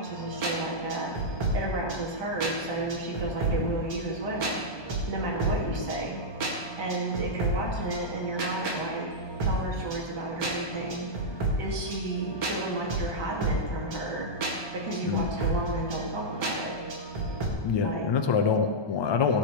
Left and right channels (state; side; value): late; right; 1.2 ms